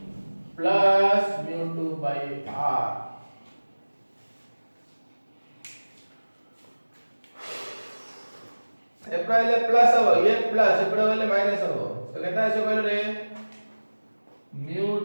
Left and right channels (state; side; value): inverted; both; correlation -1.00